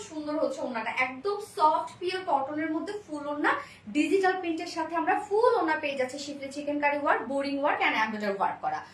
সুন্দর হচ্ছে ওন্নাটা, একদম সফট পিওর কটনের মধ্যে ফুল ওন্না ডিজিটাল প্রিন্টের সাথে আমরা ফুল ওন্না পেয়ে যাচ্ছি schiffli chikankari work, boring work and embroidery work করা।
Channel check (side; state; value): both; identical; correlation 1.00